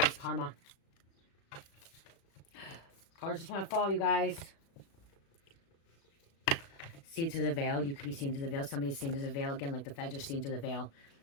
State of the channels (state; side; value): late; right; 36 ms